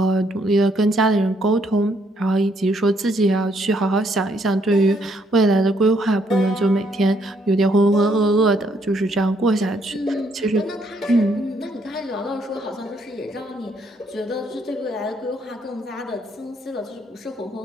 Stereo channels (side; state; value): both; normal; correlation 0.71